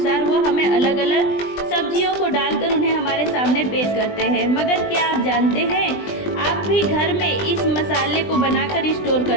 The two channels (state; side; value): late; right; 20 ms